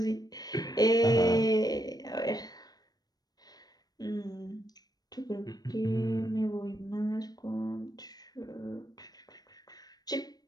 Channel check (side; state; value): right; late; 0.19 ms